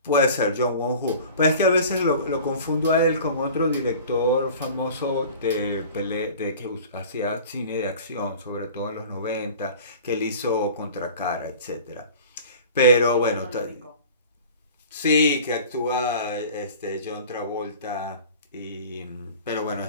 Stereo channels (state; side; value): inverted; both; correlation -0.42